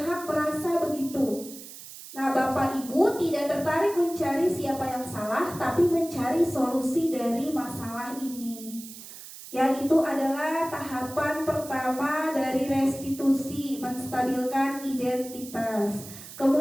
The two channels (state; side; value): noise; right; hiss, 14 dB below the sound